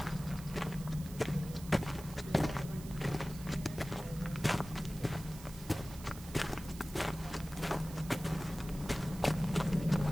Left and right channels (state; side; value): noise; right; hiss, 16 dB below the sound